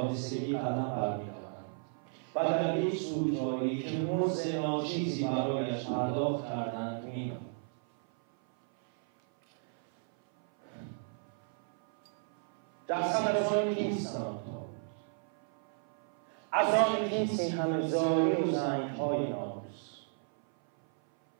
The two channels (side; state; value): left; silent; 56 dB below the other